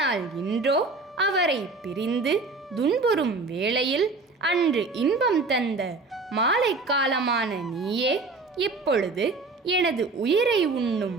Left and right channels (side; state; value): left; quieter; 3.8 dB